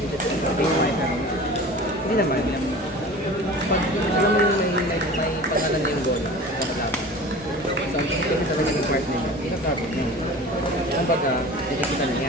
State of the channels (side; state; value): both; normal; correlation 0.38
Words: Hindi naman. Pag alam mo yung may pangalan na yung goal, kakalaban. So, ang execute sa kanyang part nila, kakabot na yun. Ang baga, nakikita na